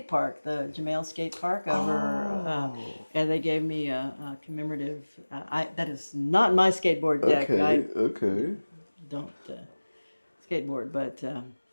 park, the Jamale Skate Park over, and they gave me a commemorative. That is not my skateboard deck. Okay, I okay. don't skateboard, but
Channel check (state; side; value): inverted; both; correlation -1.00